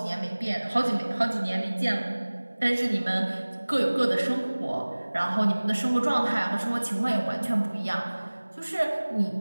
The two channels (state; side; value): inverted; both; correlation -1.00